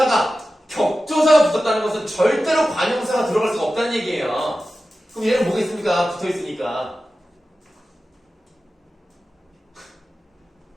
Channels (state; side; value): normal; both; correlation 0.94